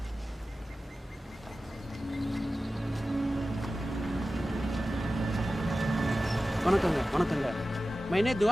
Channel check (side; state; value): both; normal; correlation 0.95